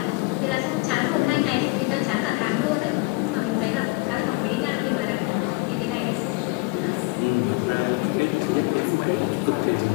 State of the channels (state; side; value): quieter; right; 25.5 dB